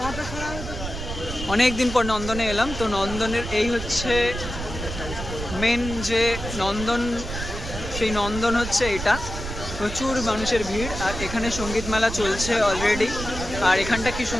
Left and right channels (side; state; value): right; noise; rumble, 7 dB below the sound